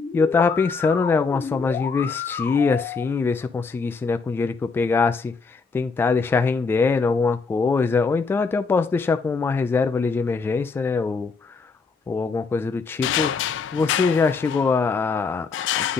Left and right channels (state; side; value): quieter; right; 4.6 dB